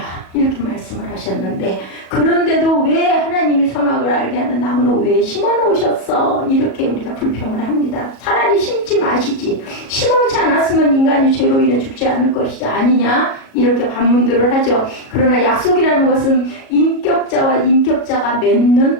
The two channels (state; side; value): late; right; 37 ms